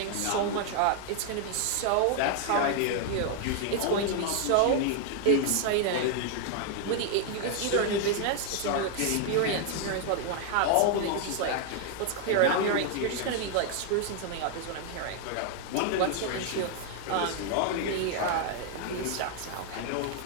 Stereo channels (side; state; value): both; different; correlation 0.00